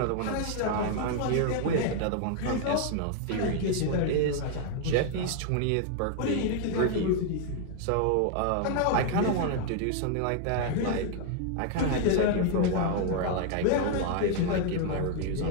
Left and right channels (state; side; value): different; both; correlation 0.00